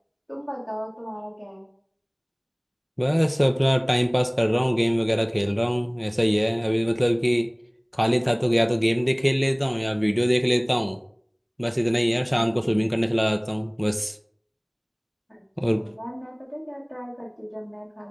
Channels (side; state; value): both; identical; correlation 1.00